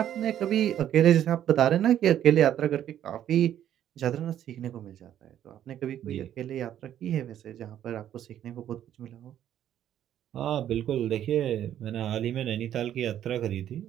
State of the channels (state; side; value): quieter; left; 10.9 dB